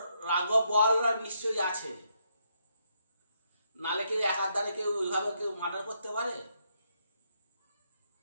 রাঘব বোয়ালরা নিশ্চয়ই আছে, নালে কেউ একার দ্বারে কেউ ওইভাবে কেউ মার্ডার করতে পারে?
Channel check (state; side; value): inverted; both; correlation -0.77